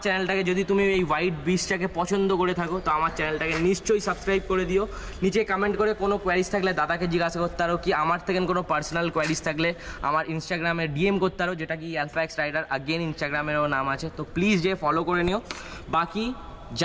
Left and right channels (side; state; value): both; identical; correlation 1.00